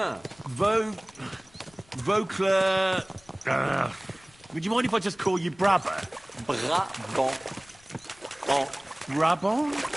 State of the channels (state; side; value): noise; left; rumble, 28 dB below the sound